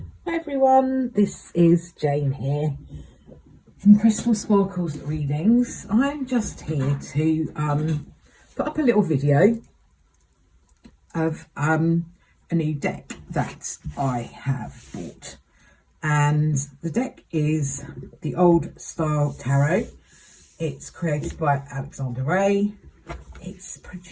Hi everyone, this is Jane here from Crystal Sparkles Readings. I'm just here to put up a little video of a new deck that I have bought, and the deck is the Old Style Tarot. It's created by Alexander Ray. It's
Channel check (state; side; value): identical; both; correlation 1.00